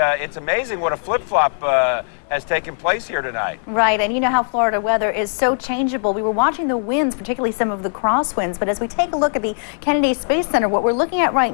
it's amazing what a flip-flop has taken place here tonight. Right, and you know how Florida weather is so changeable. We were watching the winds, particularly some of the crosswinds, but as we take a look at the Kennedy Space Center, what we're looking at right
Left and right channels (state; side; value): silent; right; digital silence